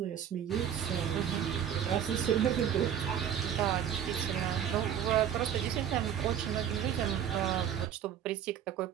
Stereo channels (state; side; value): quieter; left; 9.3 dB